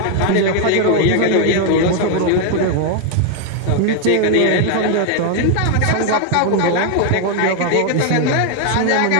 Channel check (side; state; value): both; different; correlation 0.00